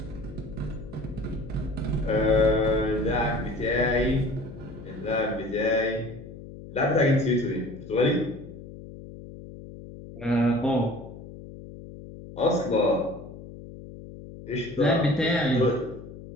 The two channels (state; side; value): noise; left; hum, 14 dB below the sound